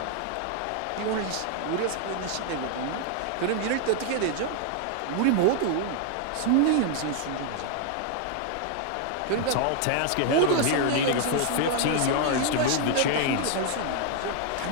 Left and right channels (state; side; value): different; both; correlation 0.00